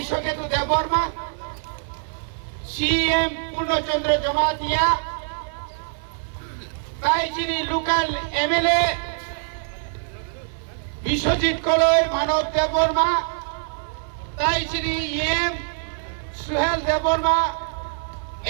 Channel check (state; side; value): silent; left; 56 dB below the other